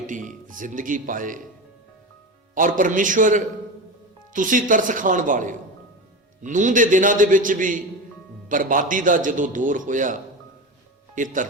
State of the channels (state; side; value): normal; both; correlation 0.24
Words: ਜ਼ਿੰਦਗੀ ਪਾਏ। ਔਰ ਪਰਮੇਸ਼ਵਰ, ਤੁਸੀਂ ਤਰਸ ਖਾਣ ਵਾਲੇ ਹੋ। ਨੂਹ ਦੇ ਦਿਨਾਂ ਦੇ ਵਿੱਚ ਵੀ ਬਰਬਾਦੀ ਦਾ ਜਦੋਂ ਦੌਰ ਹੋਇਆ, ਇਹ